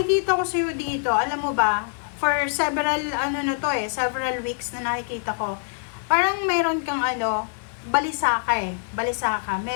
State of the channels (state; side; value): silent; right; digital silence